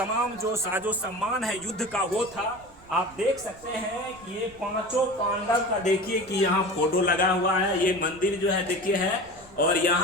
जो साजो सम्मान है युद्ध का वो था। आप देख सकते हैं कि ये 5 पांडव का देखिए कि यहाँ फोटो लगा हुआ है। ये मंदिर जो है देखिए है, और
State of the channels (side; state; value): right; noise; rumble, 24 dB below the sound